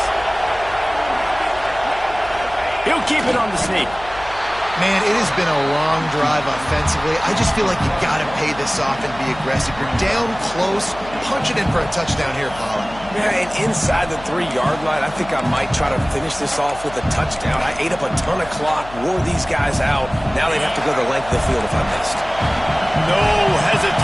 He'll keep it on the sneak. Man, it has been a long drive offensively. I just feel like you got to pay this off and be aggressive. You're down close. Punch it in for a touchdown here, Paula. Yeah, and inside the 3-yard line, I think I might try to finish this off with a touchdown. I ate up a ton of clock, wore these guys out. Now they'd have to go the length of the field if I missed. No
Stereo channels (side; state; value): left; noise; hum, 17 dB below the sound